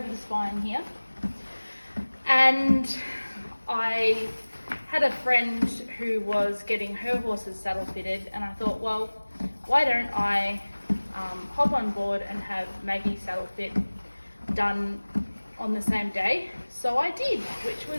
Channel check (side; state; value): both; inverted; correlation -1.00